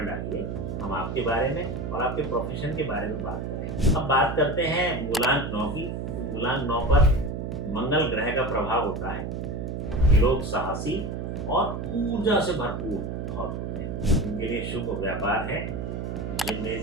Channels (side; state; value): right; noise; hum, 4 dB below the sound